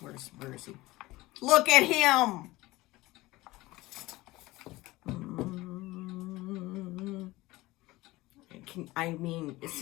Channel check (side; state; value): right; quieter; 19.4 dB